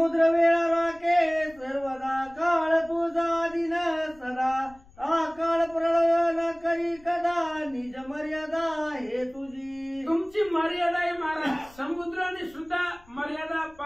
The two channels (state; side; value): noise; left; rumble, 26 dB below the sound